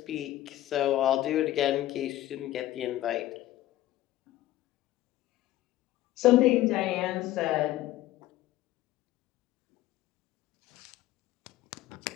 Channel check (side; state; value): right; quieter; 14.8 dB